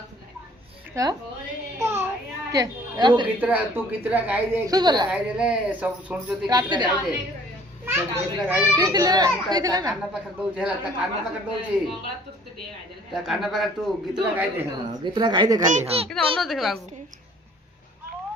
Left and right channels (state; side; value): normal; both; correlation 0.55